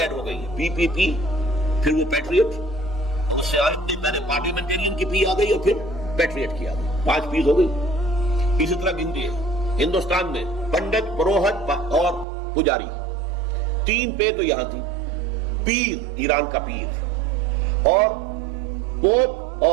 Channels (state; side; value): drops out; left; at 12.2 s